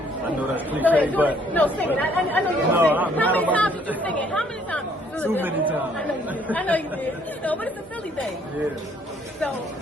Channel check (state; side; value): normal; both; correlation 0.64